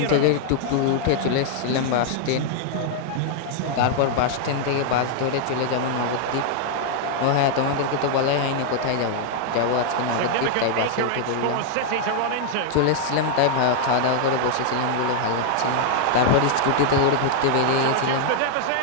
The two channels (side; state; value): both; different; correlation 0.00